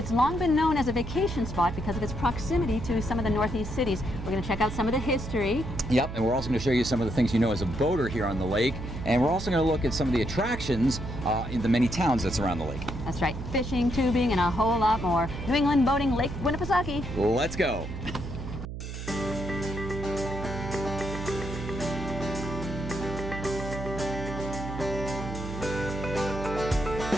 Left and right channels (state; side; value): noise; right; hum, 8 dB below the sound